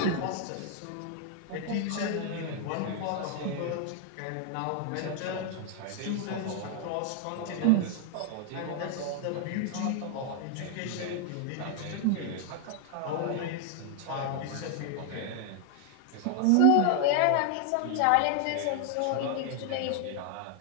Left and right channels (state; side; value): different; both; correlation 0.00